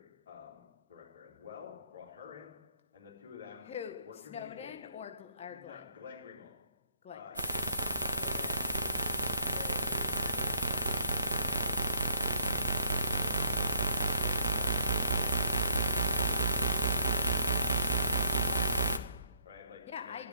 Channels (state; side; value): inverted; both; correlation -0.67